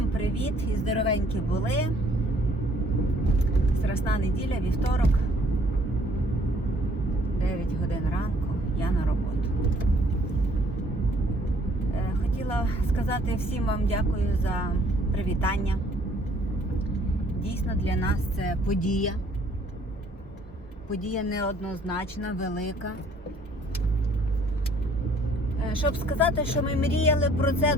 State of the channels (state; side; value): normal; both; correlation 0.61